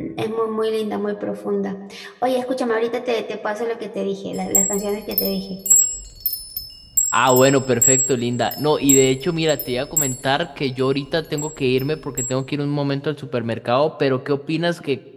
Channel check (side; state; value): both; identical; correlation 1.00